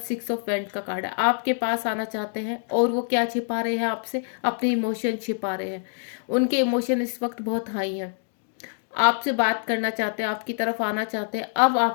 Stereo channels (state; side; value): silent; right; 61 dB below the other